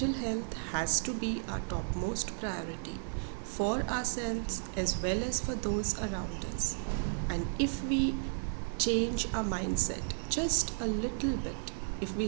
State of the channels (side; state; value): left; silent; digital silence